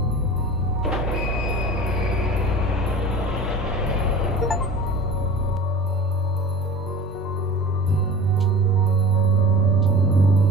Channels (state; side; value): normal; both; correlation 0.38